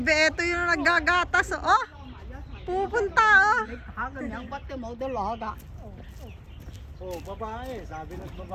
eto yung naggagatas, oh. Pupunta, oh. Hagan yang batte mo dalaga. Oh, babae. Sabi ng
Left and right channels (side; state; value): both; identical; correlation 1.00